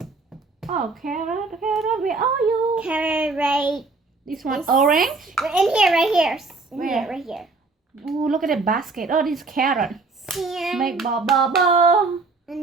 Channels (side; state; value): left; quieter; 3.8 dB